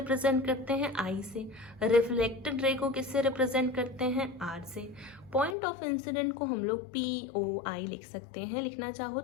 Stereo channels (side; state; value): right; drops out; at 5.6 s